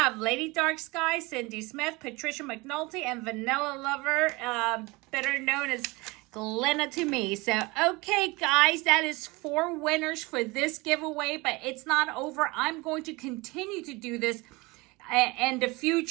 Lady Dark Sky, Cindy Smith, Patricia McNulty, and Vanilla Lover, better known as Glenna to me. So, okay, guys, that is 4 winners for this giveaway, but it's not over. I'm going to continue to do this in the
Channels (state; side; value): quieter; left; 24.0 dB